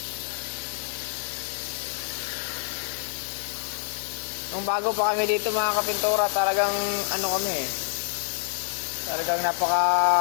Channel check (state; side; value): silent; right; digital silence